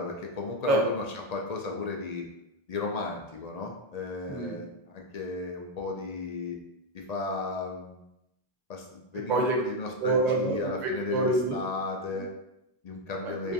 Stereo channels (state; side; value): late; right; 1.8 ms